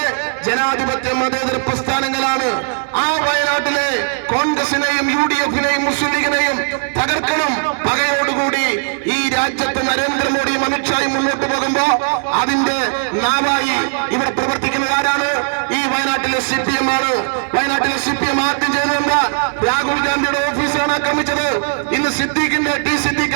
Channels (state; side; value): silent; left; digital silence